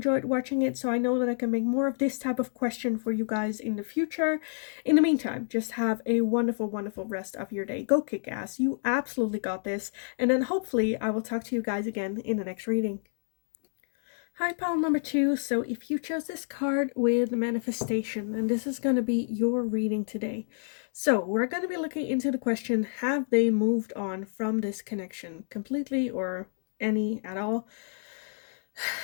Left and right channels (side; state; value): right; silent; digital silence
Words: watching it so I know that I can make more of this type of question for you guys in the future. In the meantime, just have a wonderful, wonderful rest of your day. Go kick ass. You absolutely got this. And then hopefully I will talk to you guys again in the next reading. Hi, pile number 2. So if you chose this card with manifestation, then this is going to be your reading today. So we're going to be looking into the question, have they moved on from this connection completely or any at all?